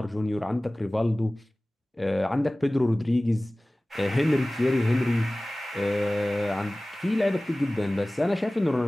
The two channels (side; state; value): both; normal; correlation 0.98